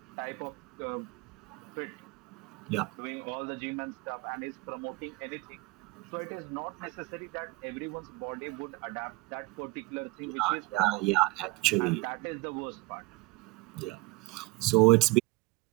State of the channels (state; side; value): quieter; left; 23.5 dB